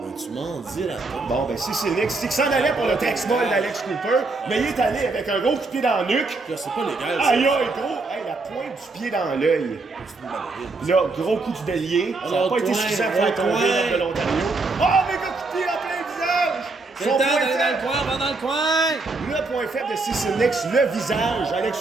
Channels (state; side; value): quieter; left; 3.5 dB